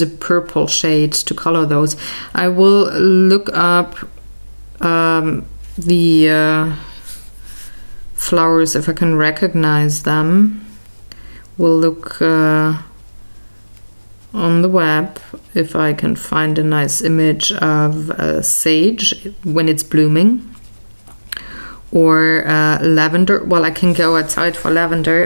purple shade to color those. I will look up the flowers if I can recognize them. We'll look on the web if I can find a nice image of sage when it's blooming, or lavender. Well, I can go outside for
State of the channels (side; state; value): both; inverted; correlation -1.00